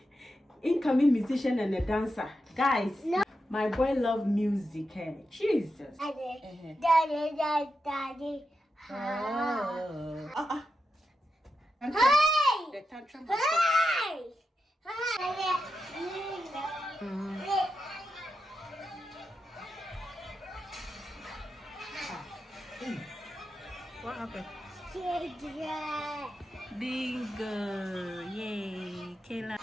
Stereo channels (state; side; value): normal; both; correlation 0.88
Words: musician and a dancer, guys. No. My boy love music. Hey, Jesus. Daddy. Hey! The tantrum was What happened? Bingo! Yay! Kayla.